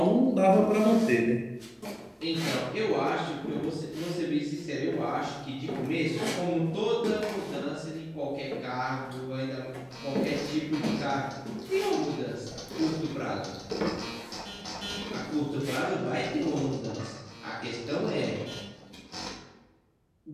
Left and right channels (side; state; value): both; identical; correlation 1.00